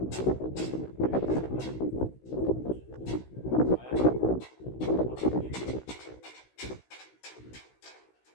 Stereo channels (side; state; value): right; late; 16 ms